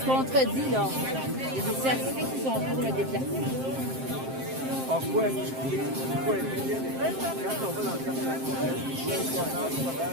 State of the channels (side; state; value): left; late; 7.6 ms